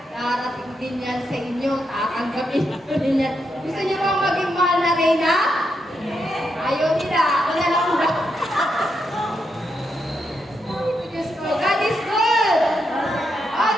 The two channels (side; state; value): both; normal; correlation 0.82